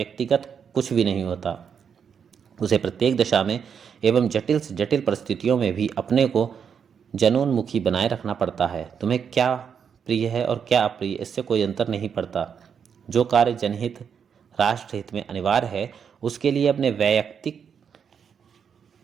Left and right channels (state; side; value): quieter; left; 7.2 dB